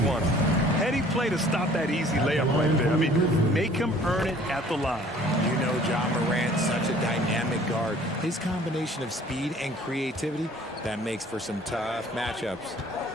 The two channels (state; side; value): normal; both; correlation 0.53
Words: Heady play to stop that easy layup right there. I mean, make him earn it at the line. You know, John Morant, such a dynamic guard. His combination of speed and creativity, that makes for some tough matchups.